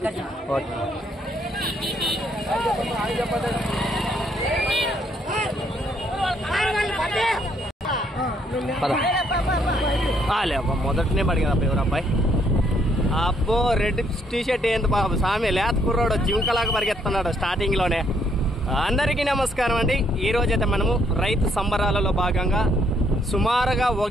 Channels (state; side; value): normal; both; correlation 0.70